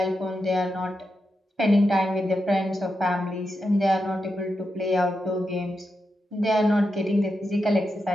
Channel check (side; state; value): both; normal; correlation 0.87